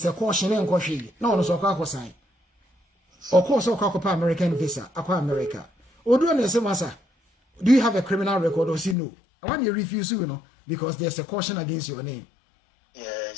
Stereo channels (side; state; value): right; drops out; at 9.0 s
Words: a caution en kwahwe. Na ono so kwako sign. Of course, American visa, America. Odo na say masa, do you have a criminal record or say no? I want you refuse because there's a caution against your name.